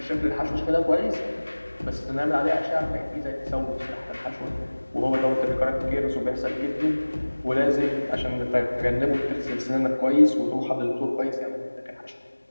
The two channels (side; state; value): both; inverted; correlation -1.00